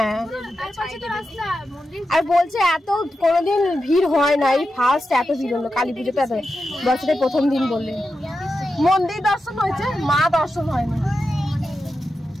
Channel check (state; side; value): normal; both; correlation 0.89